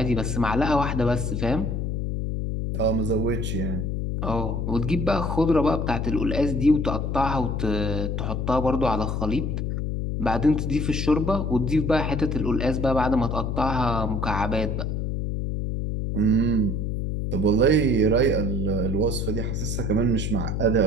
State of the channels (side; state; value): left; noise; hum, 1 dB below the sound